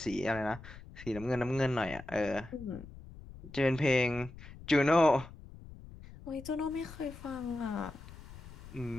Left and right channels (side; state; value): left; noise; rumble, 16 dB below the sound